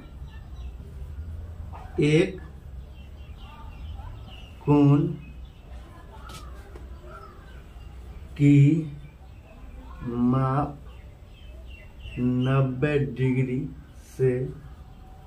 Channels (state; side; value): identical; both; correlation 1.00